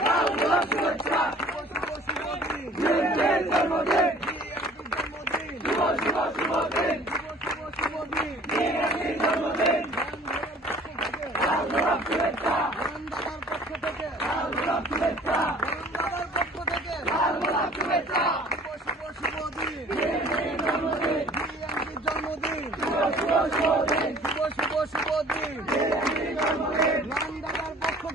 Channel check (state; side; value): normal; both; correlation 0.50